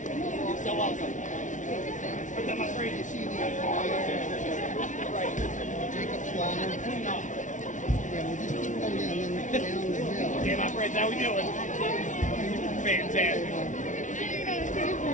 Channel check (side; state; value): right; late; 0.37 ms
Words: so welcome. But I'm afraid to see the Jacob's ladder. Yeah, we'll just keep going down and then down the hill. Okay, my friends, how we doing? Fantastic.